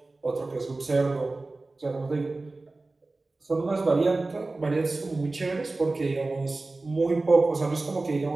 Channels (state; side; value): quieter; left; 3.3 dB